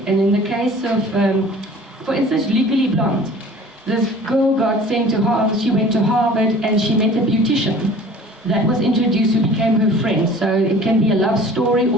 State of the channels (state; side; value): normal; both; correlation 0.46